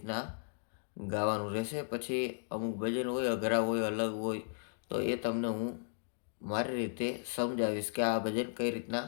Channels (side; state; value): right; silent; digital silence